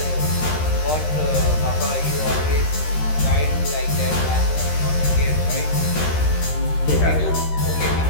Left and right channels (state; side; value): late; right; 13 ms